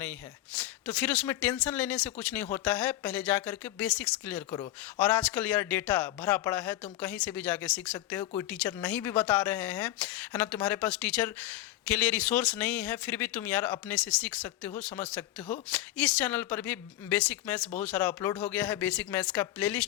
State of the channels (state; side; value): quieter; right; 14.9 dB